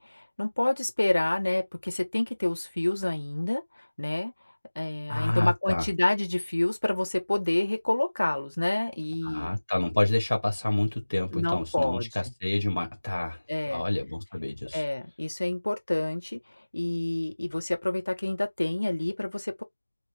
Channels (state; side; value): inverted; both; correlation -1.00